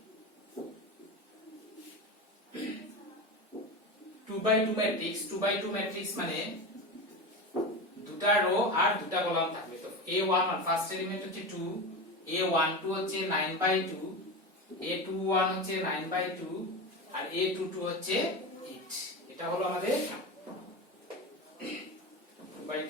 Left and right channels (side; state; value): both; normal; correlation 0.23